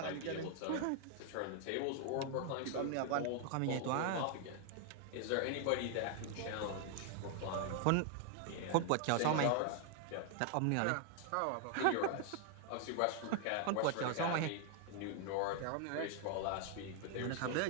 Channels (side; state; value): both; different; correlation 0.00